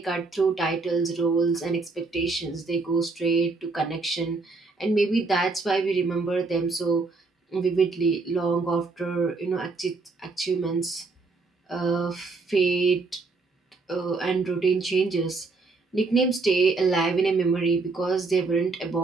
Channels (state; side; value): quieter; left; 3.9 dB